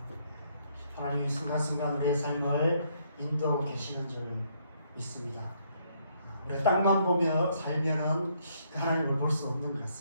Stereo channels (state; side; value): inverted; both; correlation -0.70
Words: 하나님이 순간순간 우리의 삶을 인도하고 계시는 줄 믿습니다. 우리가 땅만 보며 살면은 그 하나님을 볼 수 없는 것